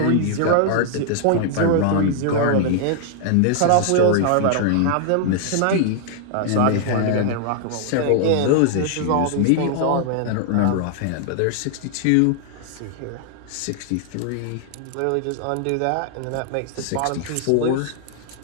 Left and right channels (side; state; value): both; different; correlation 0.00